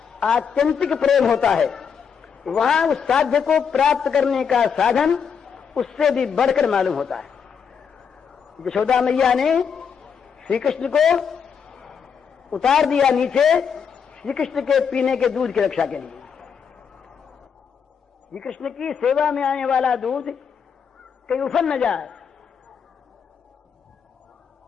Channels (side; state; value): right; quieter; 6.8 dB